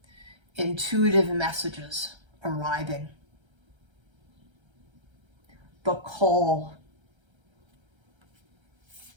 intuitive messages arriving, the call.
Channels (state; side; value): late; left; 1.3 ms